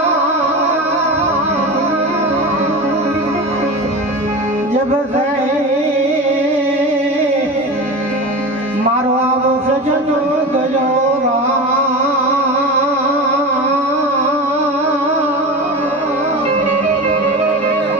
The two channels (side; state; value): both; normal; correlation 0.27